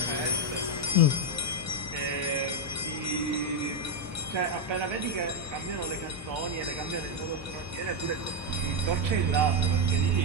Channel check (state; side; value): normal; both; correlation 0.04